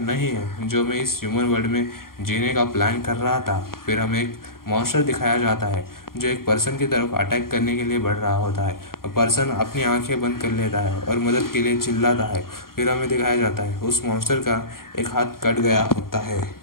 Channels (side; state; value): right; late; 0.92 ms